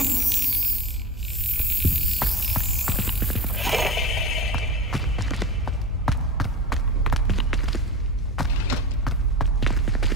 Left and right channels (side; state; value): both; normal; correlation 0.31